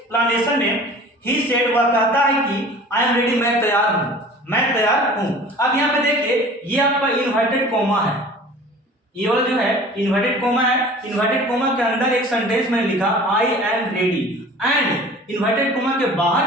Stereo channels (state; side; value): normal; both; correlation 0.44